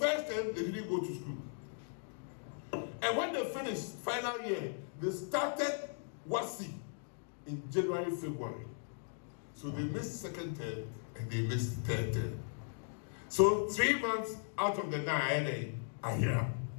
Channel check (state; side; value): silent; right; digital silence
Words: term, they didn't go to school. And when they finished final year, they started WASI in January, February. So they missed second term and they missed third term. So 3 months out of the 9 are here.